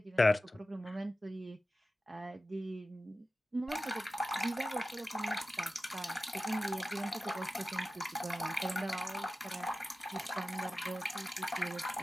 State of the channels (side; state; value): both; normal; correlation 0.94